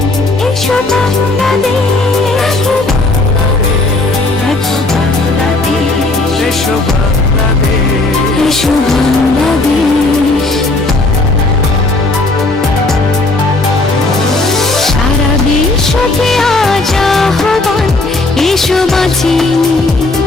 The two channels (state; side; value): quieter; right; 3.1 dB